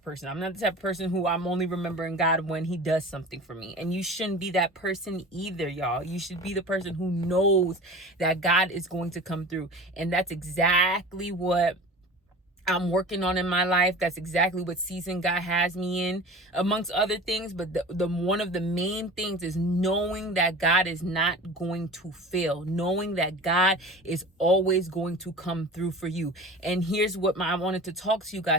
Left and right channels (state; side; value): normal; both; correlation 0.37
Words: person. I'm not the type of person who I'm only remembering God when He does something for me. And you shouldn't be that person either, y'all. You should be the person who knows that God is going to come through. And that's exactly what I'm working on in my life. That's exactly what season God has me in, amongst other things. But the one of the main things is knowing that God is not going to fail, knowing that God is always going to come through for you. And here's what I wanted to talk to you